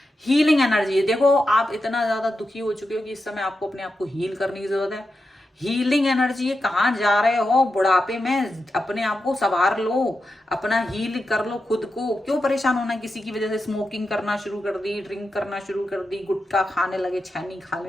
Healing energy, देखो आप इतना ज्यादा दुखी हो चुके हो कि इस समय आपको अपने आप को हील करने की जरूरत है। हीलिंग एनर्जी है, कहाँ जा रहे हो बुढ़ापे में, अपने आप को संवार लो, अपना हील कर लो खुद को। क्यों परेशान होना किसी की वजह से? स्मोकिंग करना शुरू कर दी, ड्रिंक करना शुरू कर दी, गुटखा खाने लगे, छैनी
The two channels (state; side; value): normal; both; correlation 0.89